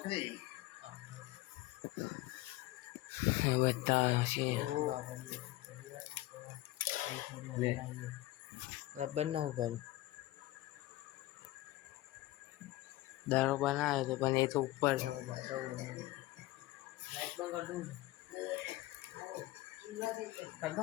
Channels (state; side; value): quieter; right; 17.7 dB